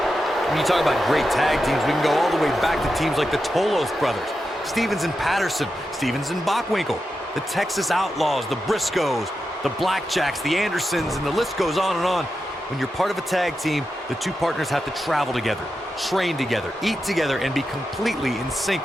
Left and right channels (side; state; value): both; normal; correlation 0.89